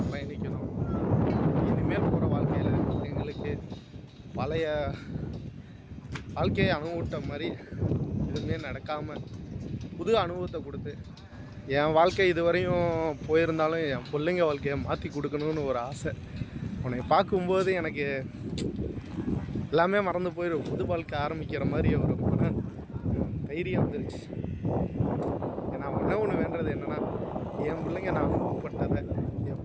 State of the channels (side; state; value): both; identical; correlation 1.00